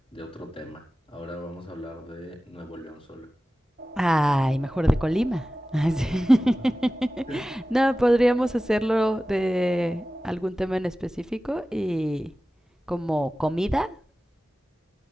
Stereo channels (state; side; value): normal; both; correlation 0.96